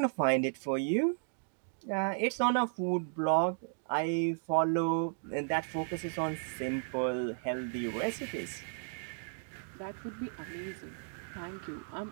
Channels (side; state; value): left; silent; digital silence